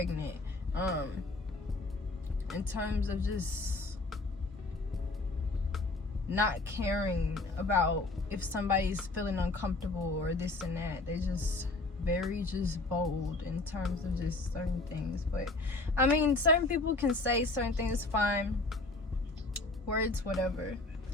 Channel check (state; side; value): quieter; right; 3.1 dB